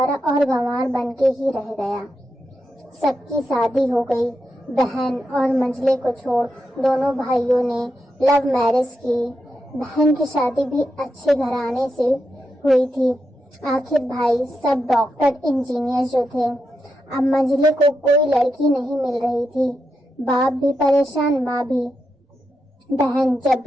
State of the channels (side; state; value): both; normal; correlation 0.86